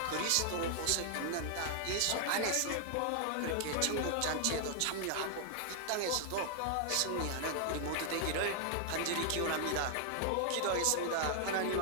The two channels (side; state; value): both; different; correlation 0.00